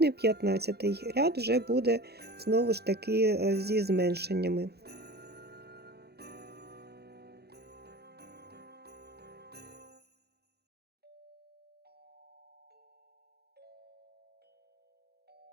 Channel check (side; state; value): left; late; 0.47 ms